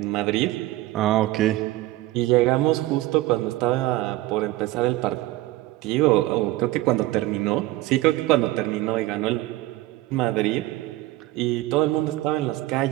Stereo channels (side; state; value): left; quieter; 17.6 dB